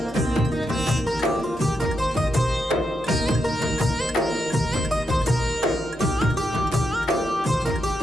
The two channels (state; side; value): normal; both; correlation 0.83